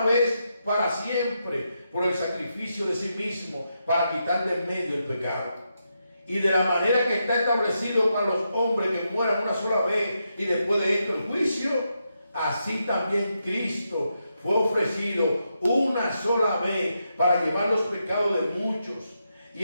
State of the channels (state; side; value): inverted; both; correlation -0.84